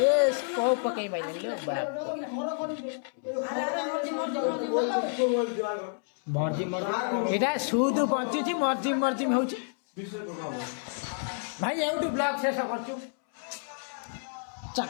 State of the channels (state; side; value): silent; right; 58 dB below the other